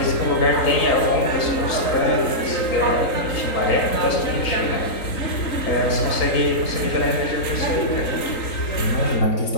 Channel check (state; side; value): late; right; 3.9 ms